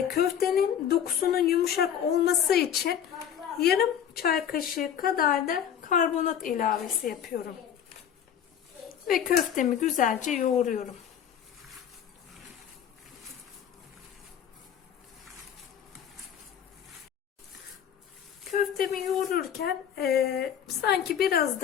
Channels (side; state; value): right; quieter; 9.0 dB